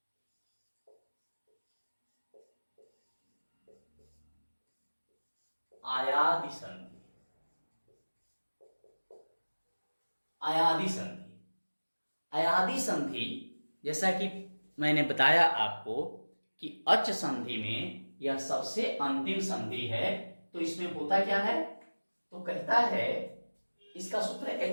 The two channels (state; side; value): inverted; both; correlation -1.00